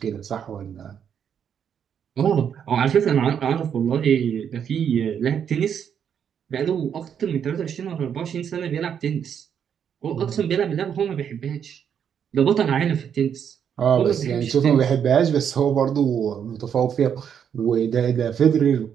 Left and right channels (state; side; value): quieter; left; 8.1 dB